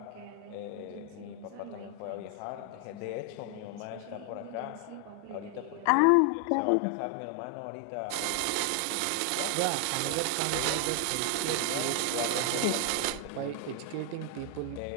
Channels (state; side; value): different; both; correlation 0.00